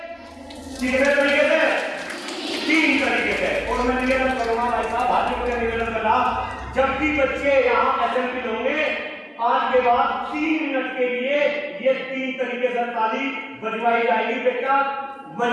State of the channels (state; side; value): identical; both; correlation 1.00